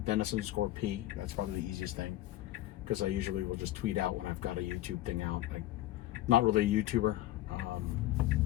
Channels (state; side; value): quieter; right; 15.2 dB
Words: Dennis_P. That's probably the easiest thing, because I usually will just tweet out when I've got a YouTube thing out. I'm not really a YouTuber,